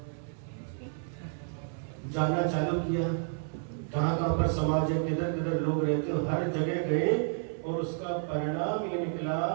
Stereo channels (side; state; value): left; silent; 57 dB below the other